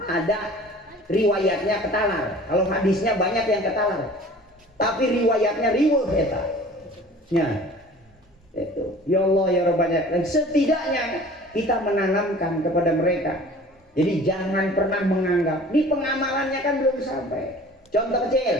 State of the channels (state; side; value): normal; both; correlation 0.45